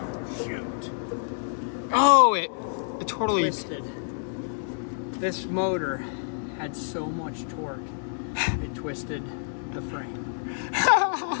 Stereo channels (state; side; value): silent; right; digital silence